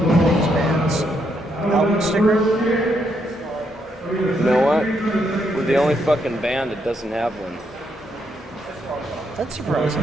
Album sticker? You know what? We're the only fucking band that doesn't have one. That's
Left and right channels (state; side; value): normal; both; correlation 0.77